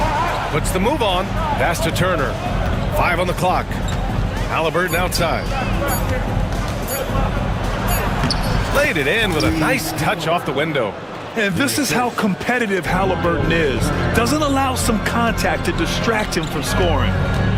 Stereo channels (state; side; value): identical; both; correlation 1.00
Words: Puts the move on. Pass to Turner. 5 on the clock. Halliburton outside. Laid it in with a nice touch off the window. And this is how competitive Halliburton is. Doesn't allow some contact to distract him from scoring.